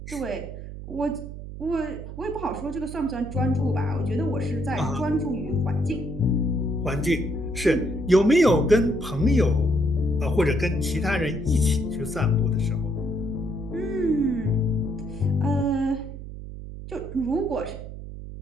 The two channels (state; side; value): noise; right; hum, 10 dB below the sound